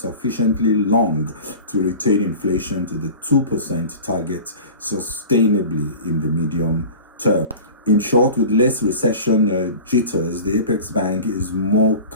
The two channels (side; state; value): both; inverted; correlation -0.37